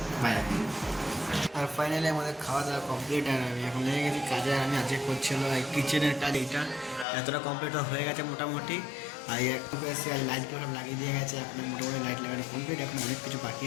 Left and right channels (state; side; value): drops out; right; at 7.1 s